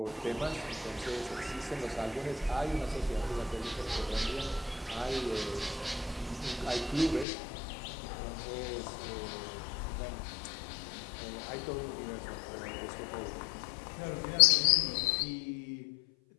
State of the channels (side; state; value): right; drops out; at 7.2 s